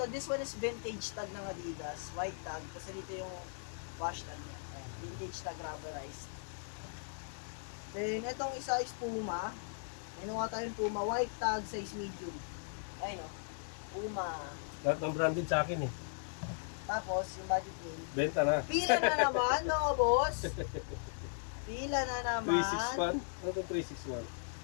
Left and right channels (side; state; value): right; silent; digital silence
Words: this one is vintage tag ng Adidas. White tag. Kasi dito yung wash tag niya. Ayan, vintage tag rubberized. Then, itong isa is Puma. Ano nga tayong Puma? White tag, size medium. Ay no, Puma. Lahat ng branded sa akin eh. Tapos, yung budget yun. Benta na. Pila na naman, no, boss? Pila na naman. 361? Ano itong 361?